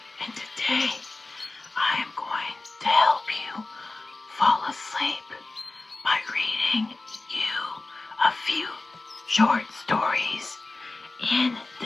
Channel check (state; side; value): quieter; right; 3.2 dB